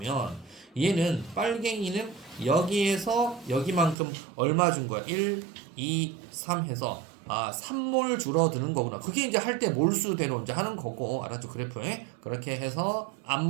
얘는 빨갱이는 여기에서 여기만큼 얼마 준 거야? 1, 2, 3 해서 3몰 줄어드는 거구나. 그게 이제 할 때 몰수대로 이제 하는 거고, 알았죠? 그래프에 그렇게 해서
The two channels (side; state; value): left; drops out; at 4.0 s